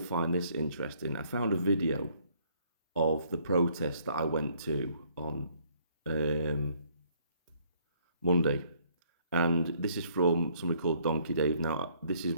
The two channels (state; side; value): inverted; both; correlation -0.64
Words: this interesting. I found a video of the protest that I went to on um, Monday, and this is from somebody called Donkey Dave. Now, this is